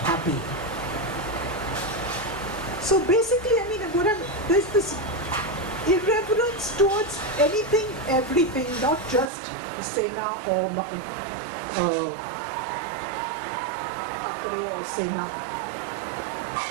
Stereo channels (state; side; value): drops out; left; at 9.3 s